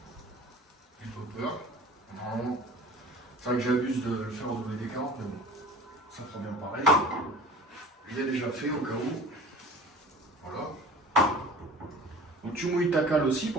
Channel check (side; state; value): both; normal; correlation 0.42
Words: j'ai pas peur. Non, c'est vrai que j'abuse de le faire au WD-40, mais bon, ça fera bien pareil. Je l'ai déjà fait au cas où, voilà. Donc tu mouilles ta cale aussi